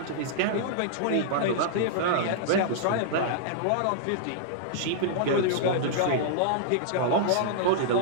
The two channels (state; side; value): different; both; correlation -0.02